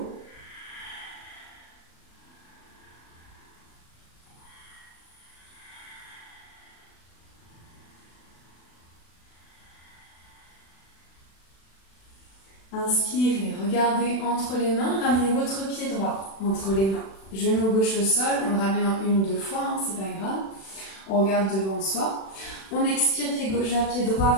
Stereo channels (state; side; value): late; right; 36 ms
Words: Inspirez, regardez entre les mains, ramenez votre pied droit entre les mains. Genou gauche au sol, on le ramène en 1 ou 2 fois, hein, c'est pas grave. On regarde devant soi. On expire, pied gauche vers pied droit,